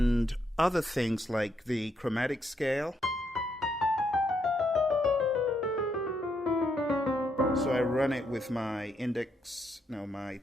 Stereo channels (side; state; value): both; normal; correlation 0.77